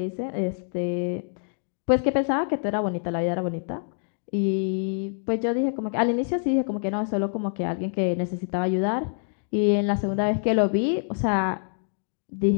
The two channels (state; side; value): silent; right; digital silence